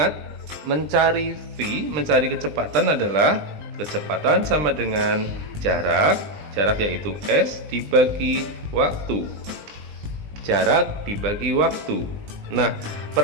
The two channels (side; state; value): left; late; 20 ms